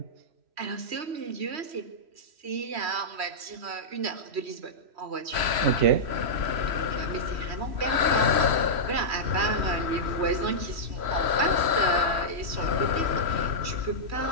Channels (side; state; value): left; late; 3.1 ms